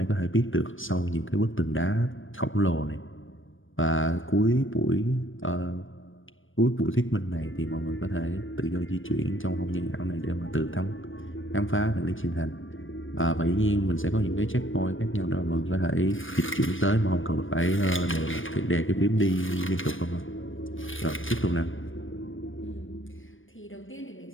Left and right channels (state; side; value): late; right; 0.57 ms